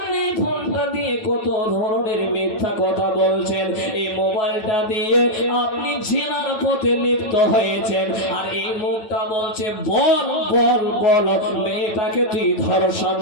ফোনটা দিয়ে কত ধরনের মিথ্যা কথা বলছেন, এই মোবাইলটা দিয়ে আপনি জিনার পথে লিপ্ত হয়েছেন। আর এই মুখটা বলছে বল বল বল, মেয়েটাকে তুই ধর্ষণ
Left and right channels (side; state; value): right; late; 9.1 ms